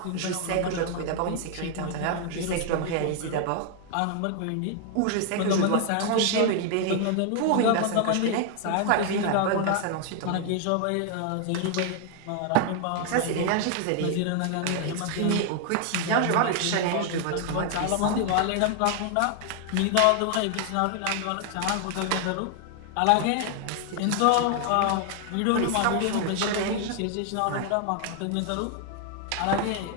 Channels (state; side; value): different; both; correlation 0.00